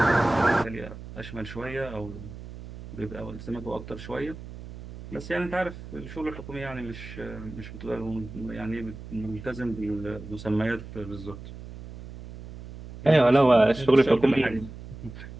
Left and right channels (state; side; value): noise; right; hum, 13 dB below the sound